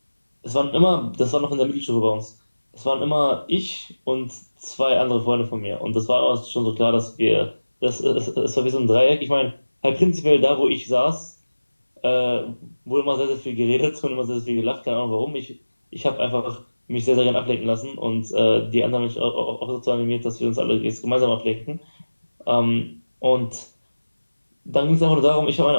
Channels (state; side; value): inverted; both; correlation -1.00